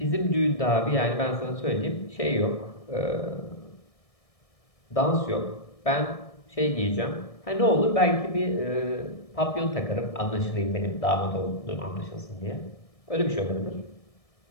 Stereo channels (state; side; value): late; right; 1.6 ms